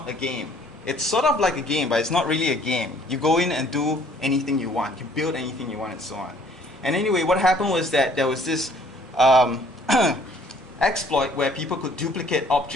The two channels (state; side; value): normal; both; correlation 0.59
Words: a game. It's sort of like a game, but it's not really a game. You go in and do anything you want. You build anything you want and so on. And anyway, what happened was that there was this exploit where people could duplicate